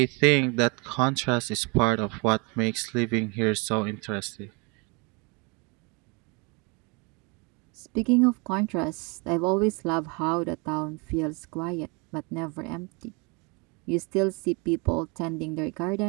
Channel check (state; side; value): quieter; left; 30.6 dB